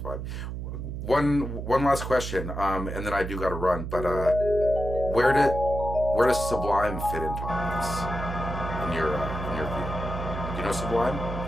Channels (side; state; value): right; noise; hum, 6 dB below the sound